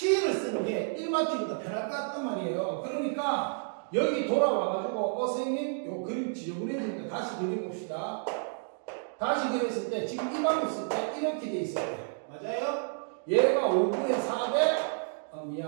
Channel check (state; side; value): silent; left; 56 dB below the other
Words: 쓰는 게 1마 T보다 편할 것 같단 말이에요. 그러니까 여기 돌아와가지고 선생님, 요 그림 지저분해지니까 다시 그려봅시다. 다시 그렸을 때 지금 이 방법 쓸 때 이렇게 돼 있어요. 맞아요? 얘가 5분의 4대